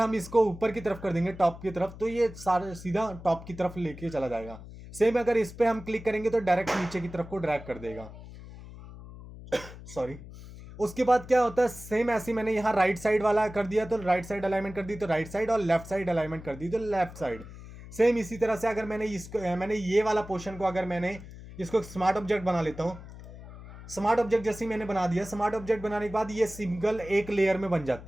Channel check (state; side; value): noise; left; hum, 15 dB below the sound